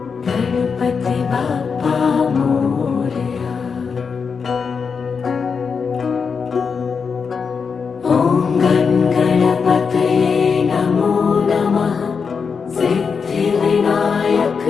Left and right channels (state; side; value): quieter; right; 5.7 dB